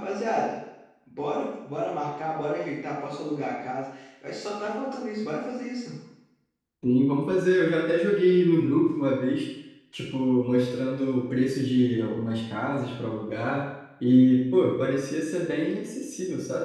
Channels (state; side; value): identical; both; correlation 1.00